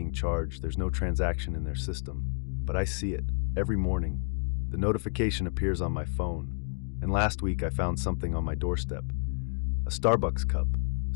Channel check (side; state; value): right; silent; digital silence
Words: charged, there's no transaction in their system. But I see it, every morning. The notification appears on my phone. And last week I found something on my doorstep. A Starbucks cup,